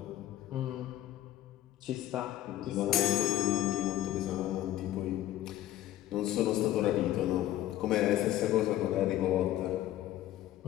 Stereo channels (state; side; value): quieter; right; 13.6 dB